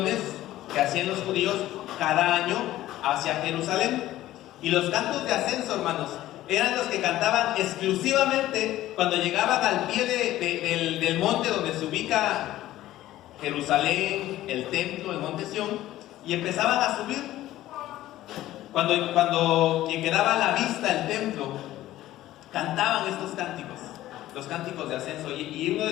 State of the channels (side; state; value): right; quieter; 14.7 dB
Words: que hacían los judíos cada año hacia Jerusalén. Y los cantos de ascenso, hermanos, eran los que cantaban exclusivamente cuando llegaban al pie del monte donde se ubica Jerusalén, el templo, el monte Sión, y empezaban a subir. Cuando quedaba a la vista el templo, cantaban estos cánticos, los cánticos de ascenso, y uno